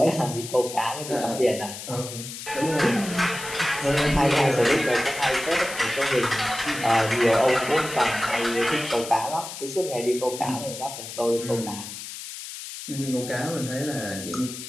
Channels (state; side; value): noise; left; hiss, 10 dB below the sound